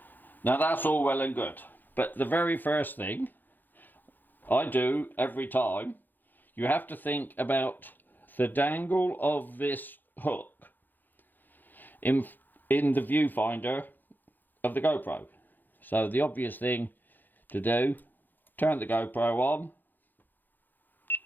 Now that's all well and good, but the very first thing I do every time, you have to think about the dangle of this hook in the viewfinder of the GoPro. So the obvious thing to do, turn the GoPro on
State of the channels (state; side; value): late; right; 0.088 ms